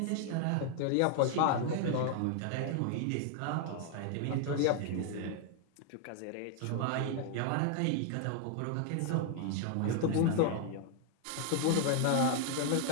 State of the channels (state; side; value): different; both; correlation 0.00